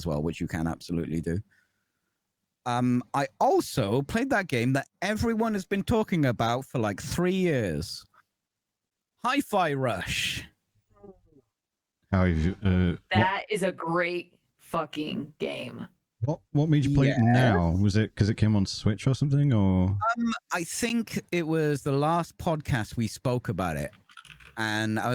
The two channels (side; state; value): both; identical; correlation 1.00